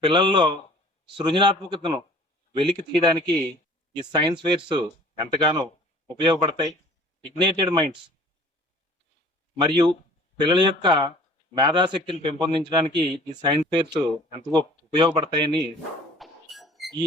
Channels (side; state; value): both; normal; correlation 0.49